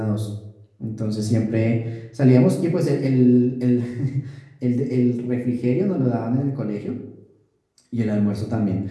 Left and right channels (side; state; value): both; identical; correlation 1.00